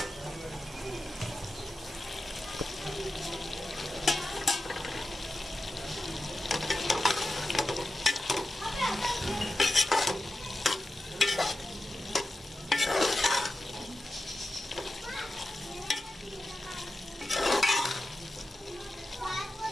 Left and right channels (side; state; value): both; normal; correlation 0.92